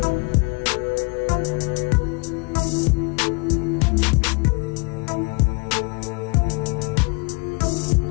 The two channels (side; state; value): right; quieter; 28.9 dB